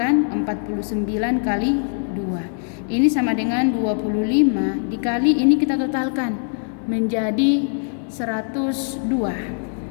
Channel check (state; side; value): silent; right; 62 dB below the other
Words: 49 kali 2. Ini sama dengan 25 dikali, ini kita totalkan menjadi 102.